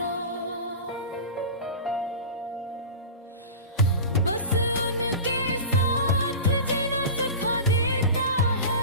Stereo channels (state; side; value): inverted; both; correlation -0.30